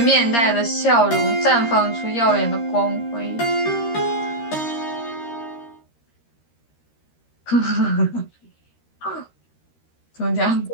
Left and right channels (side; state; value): right; late; 13 ms